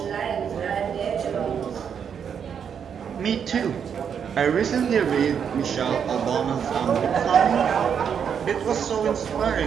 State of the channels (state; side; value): quieter; left; 7.6 dB